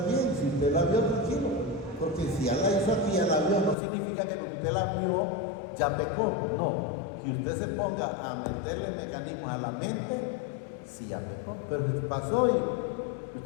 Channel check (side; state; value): right; drops out; at 3.8 s